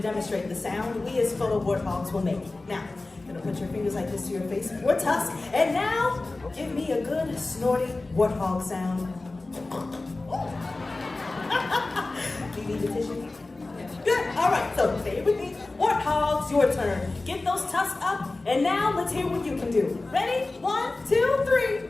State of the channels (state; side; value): quieter; right; 3.2 dB